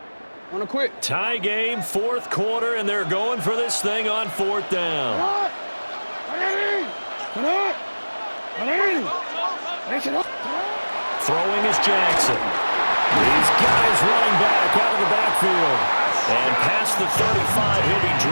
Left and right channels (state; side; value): inverted; both; correlation -1.00